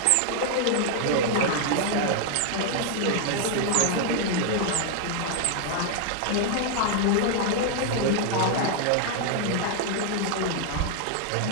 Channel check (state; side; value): different; both; correlation 0.00